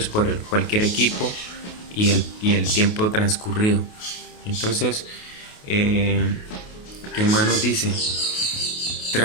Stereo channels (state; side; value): late; right; 28 ms